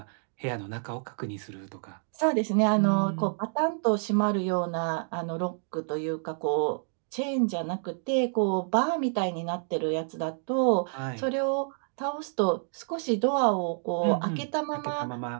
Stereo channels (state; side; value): silent; left; digital silence